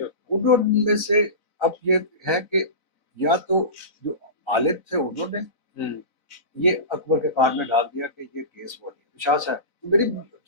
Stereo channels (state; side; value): late; right; 3.9 ms